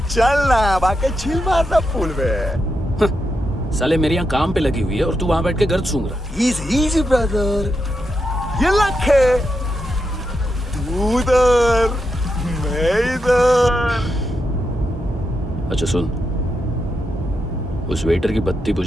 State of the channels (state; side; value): normal; both; correlation 0.85